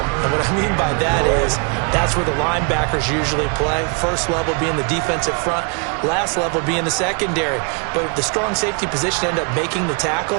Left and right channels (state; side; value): quieter; left; 35.8 dB